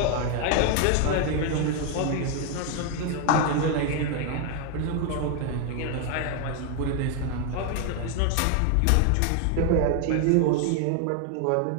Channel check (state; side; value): different; both; correlation 0.01